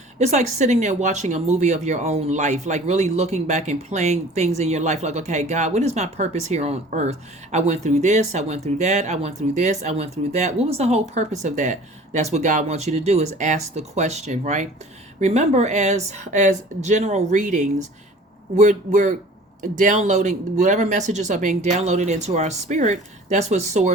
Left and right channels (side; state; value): both; normal; correlation 0.46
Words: it's like sitting there watching a movie of your own life, like really looking back and playing things in your life. Like, okay, God, what is my purpose here on earth? I went through this, I went through that, I went through this, I went through that. What was the whole purpose of that? That's what God wants you to do, is ask the question, right? Remember, as general readings, we're downloading whatever messages are being downloaded into our spirit. That's what